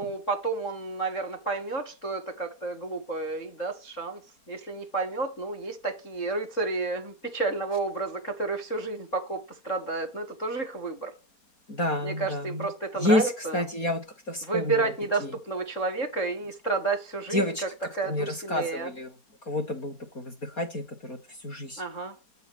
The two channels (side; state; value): right; late; 4.2 ms